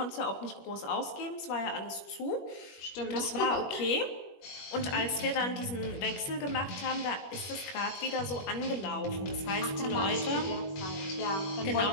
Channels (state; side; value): late; right; 21 ms